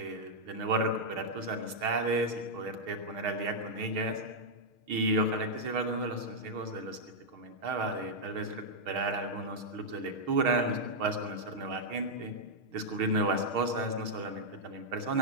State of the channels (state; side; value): late; left; 6.4 ms